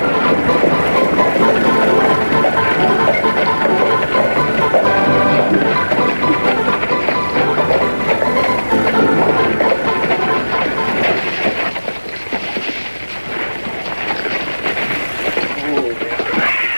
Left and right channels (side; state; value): both; inverted; correlation -1.00